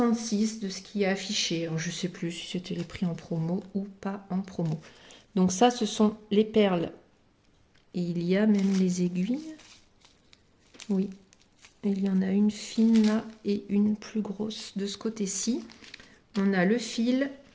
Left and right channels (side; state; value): both; identical; correlation 1.00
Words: de ce qui est affiché. Alors, je ne sais plus si c'était les prix en promo ou pas en promo. Donc ça, ce sont les perles. Et il y a même les aiguilles. Oui, il y en a une fine là et une plus grosse de ce côté-ci. On a le fil.